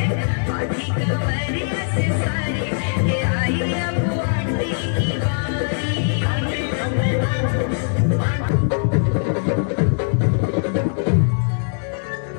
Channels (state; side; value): silent; right; 65 dB below the other